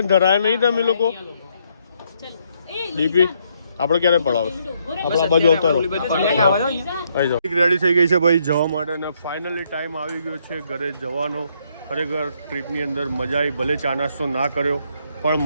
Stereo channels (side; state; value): both; inverted; correlation -0.73